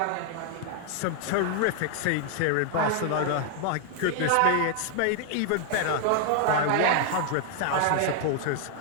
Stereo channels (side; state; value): both; different; correlation 0.00